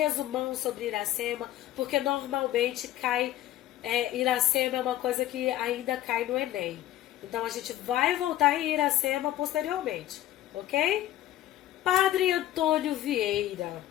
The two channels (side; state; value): right; quieter; 13.8 dB